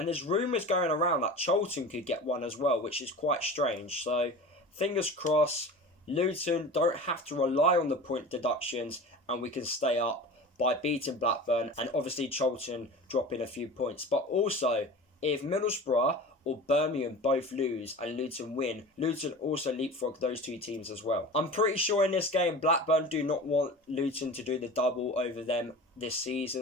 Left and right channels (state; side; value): normal; both; correlation 0.35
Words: there's rumours going around that Charlton could get one as well, which is quite strange. So fingers crossed, Luton don't have to rely on the point deductions and we can stay up by beating Blackburn and obviously Charlton dropping a few points. But also, if Middlesbrough or Birmingham both lose and Luton win, Luton also leapfrog those two teams as well. I'm pretty sure in this game, Blackburn do not want Luton to do the double over them this